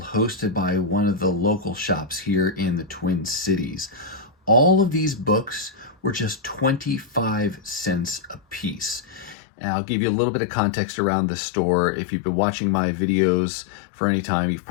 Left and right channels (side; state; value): right; drops out; at 9.3 s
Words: hosted by one of the local shops here in the Twin Cities. All of these books were just 25 cents a piece. And I'll give you a little bit of context around the store. If you've been watching my videos for any time, you've